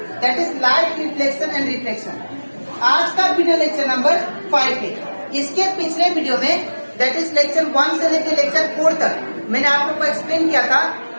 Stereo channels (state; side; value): inverted; both; correlation -1.00